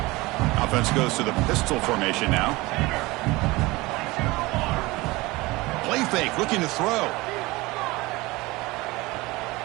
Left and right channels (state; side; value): quieter; left; 21.7 dB